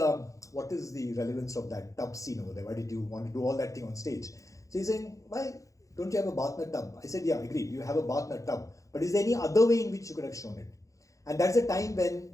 what is the relevance of that tub scene over there? Why did you want to do all that thing on stage? So he's saying, why don't you have a bath in a tub? I said, yeah, agreed. You have a bath in a tub. But is there any other way in which you could have shown it? And that's a time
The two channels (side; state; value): right; late; 0.16 ms